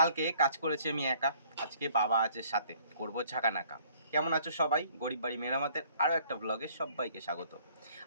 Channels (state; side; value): inverted; both; correlation -0.58